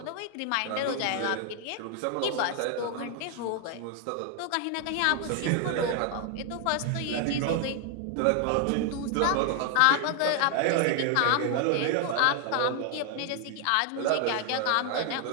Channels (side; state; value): both; different; correlation 0.01